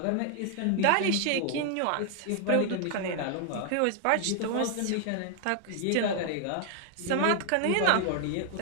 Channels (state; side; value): different; both; correlation 0.00